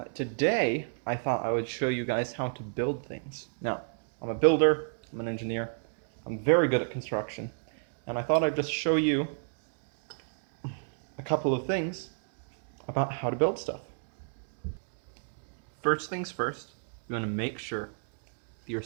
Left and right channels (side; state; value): left; silent; digital silence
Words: Today, I thought I would show you guys how to build things. Now, I'm a builder, I'm an engineer, I'm very good at construction, and I thought I'd just show you a couple of things about how to build stuff. First things first, you want to make sure that you're